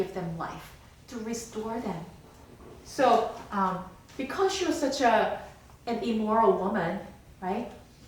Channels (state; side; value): identical; both; correlation 1.00